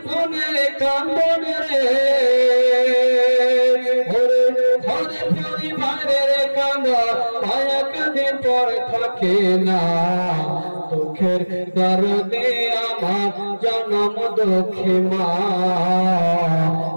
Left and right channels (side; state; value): both; inverted; correlation -1.00